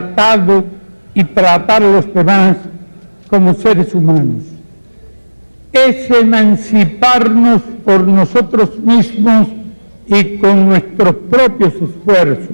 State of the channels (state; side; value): inverted; both; correlation -1.00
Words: y tratar a los demás como seres humanos. Es emanciparnos por nosotros mismos y con nuestros propios